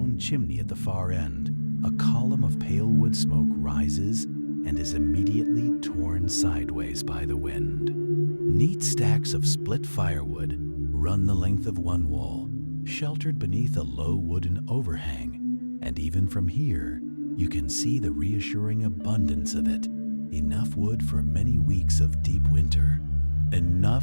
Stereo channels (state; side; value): inverted; both; correlation -1.00